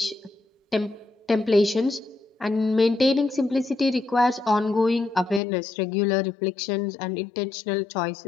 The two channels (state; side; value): drops out; right; at 5.4 s